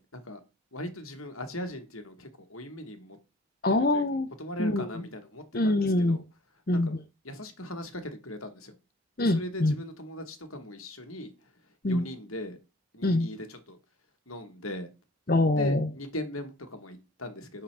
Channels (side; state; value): both; normal; correlation 0.52